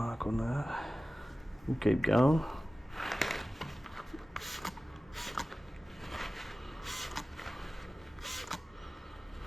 on that. We'll keep going.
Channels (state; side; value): normal; both; correlation 0.96